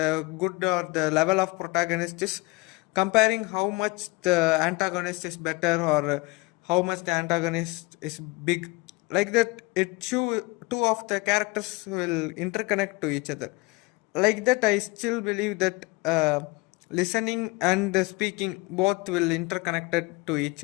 good or the level of protagonist is comparing how much the antagonist is better, or how much the antagonist is big. Like that, it show two of the characters will interconnect to each other. Like that, I still believe that listening and speaking both will interconnected to each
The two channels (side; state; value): right; quieter; 25.1 dB